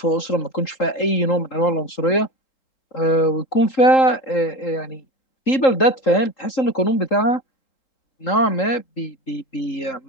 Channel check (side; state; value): right; late; 3.8 ms